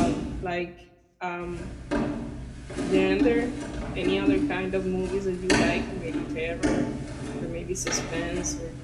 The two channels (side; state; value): both; identical; correlation 1.00